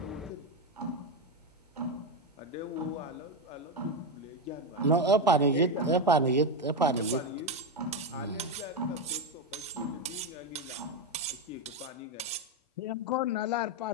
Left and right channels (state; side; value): normal; both; correlation 0.10